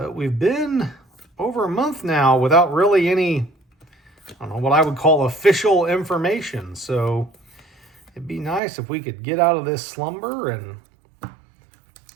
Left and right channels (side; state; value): left; drops out; at 8.6 s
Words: we've been over a month now without really any, I don't know, what I would call official information. So it'd be nice if we could get out of this slumber and